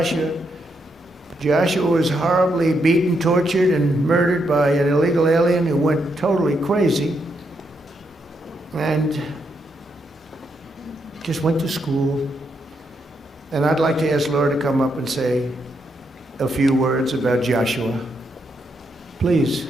Joshua was horribly beaten, tortured, and murdered by an illegal alien who went totally crazy. And just went to school. And I'd like to ask Laura to come up and say a few words about Joshua. Please.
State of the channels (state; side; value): normal; both; correlation 0.79